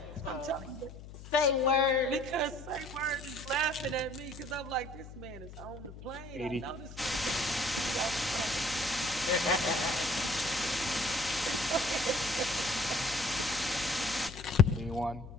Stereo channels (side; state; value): left; noise; hum, 14 dB below the sound